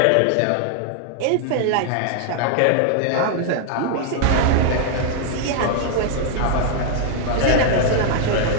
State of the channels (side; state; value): both; different; correlation 0.00